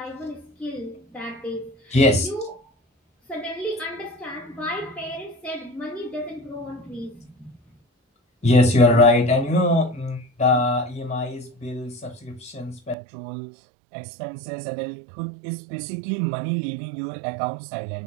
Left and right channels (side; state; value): left; drops out; at 13.0 s